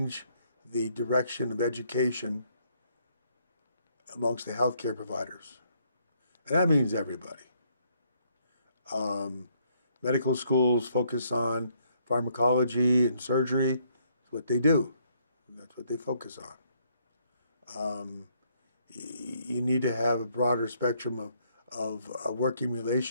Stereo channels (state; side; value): inverted; both; correlation -0.69